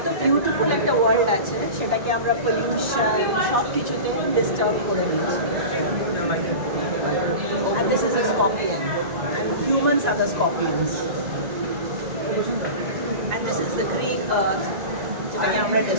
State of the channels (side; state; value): left; late; 1.9 ms